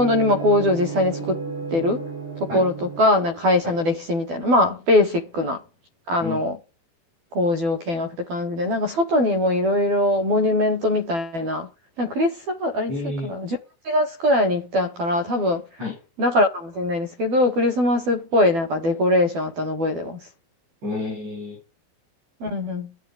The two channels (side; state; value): left; late; 12 ms